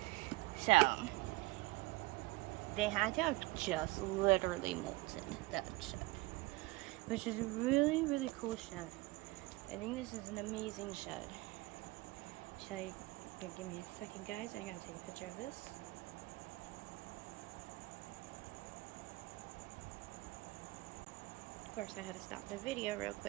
So, they had to have just literally molted that shed. Which is a really, really cool shed. I think this is an amazing shed. Give me a second, guys. I gotta take a picture of this. Of course, I had to stop the video real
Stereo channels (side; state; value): left; quieter; 21.4 dB